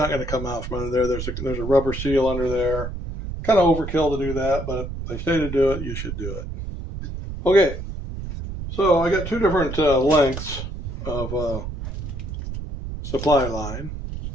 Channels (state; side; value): noise; right; rumble, 7 dB below the sound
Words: going to come out from under there. There's a rubber seal under there. Kind of overkill to do that, but if they say to do it, you should do it. Okay, so I got two different lengths of supply line,